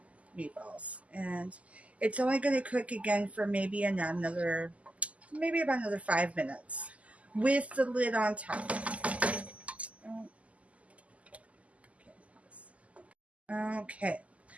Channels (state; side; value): late; left; 0.068 ms